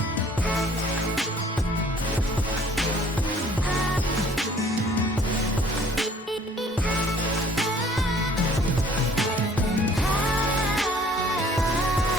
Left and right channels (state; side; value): normal; both; correlation 0.55